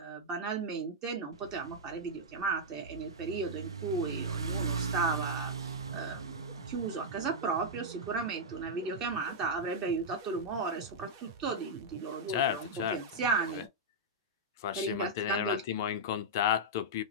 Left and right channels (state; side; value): normal; both; correlation -0.07